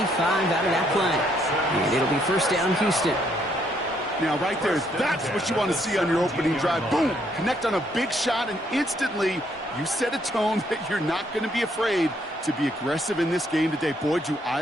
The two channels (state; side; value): normal; both; correlation 0.70